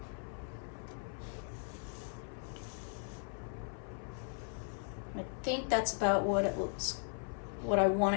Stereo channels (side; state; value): right; silent; 53 dB below the other